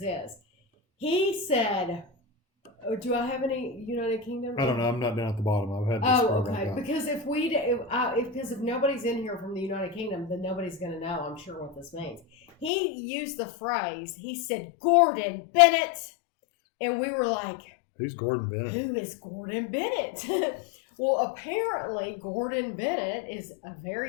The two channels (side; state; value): right; drops out; at 12.7 s